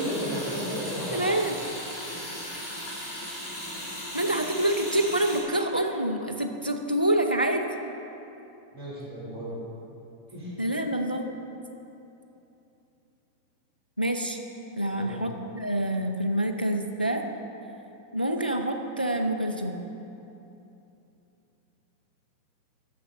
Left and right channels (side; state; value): both; inverted; correlation -0.53